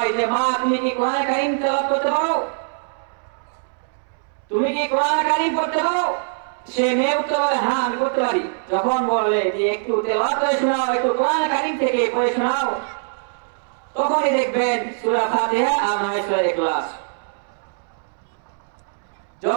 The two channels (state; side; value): silent; left; 64 dB below the other